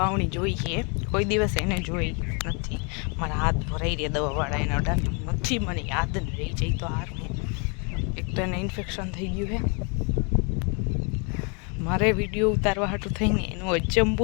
जोई है कोई दिवस एने जोई नहीं मारा हाथ भराई रहा दवावाड़ा एना अडानी नहीं मने याद नहीं रही जाए तो हार में एक तो एने इन्फेक्शन थी गयु है मारे विडियो उतारवा हाटू थईने एनो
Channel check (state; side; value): quieter; right; 35.3 dB